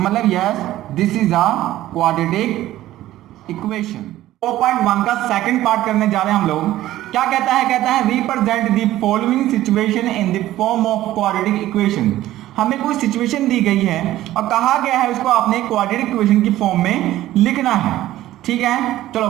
yes this is a quadratic equation. 4.1 का सेकंड पार्ट करने जा रहे हैं हम लोग। क्या कहता है represent the following situation in the form of quadratic equation. हमें कोई सिचुएशन दी गई है और कहा गया है उसको आपने क्वाड्रेटिक इक्वेशन की फॉर्म में लिखना है, ठीक है। चलो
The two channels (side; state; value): left; quieter; 14.6 dB